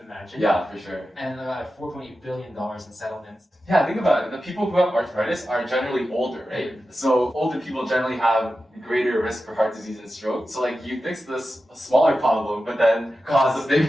imagine. Yeah, for sure. And $4.8 billion in settlements. Yeah, think about it. The people who have arthritis are generally older, right? So older people generally have greater risk for heart disease and stroke. So like you fix this smaller problem, but then cause a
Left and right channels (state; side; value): normal; both; correlation 0.92